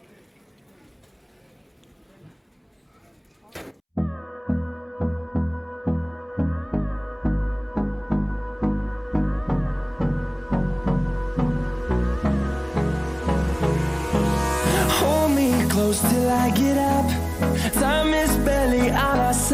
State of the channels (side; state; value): both; identical; correlation 1.00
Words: Close till I get up. Time is barely on our